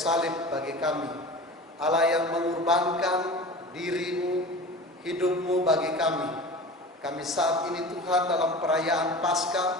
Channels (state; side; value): normal; both; correlation 0.35